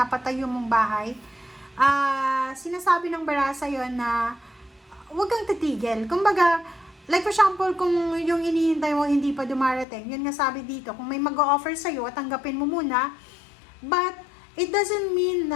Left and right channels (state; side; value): drops out; right; at 9.9 s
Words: mong bahay, sinasabi ng bara sa'yo na huwag kang titigil. Kumbaga, like for example, kung yung inihintay mo hindi pa dumarating, yun nga sabi dito, kung may mag-o-offer sa'yo, tanggapin mo muna, but it doesn't mean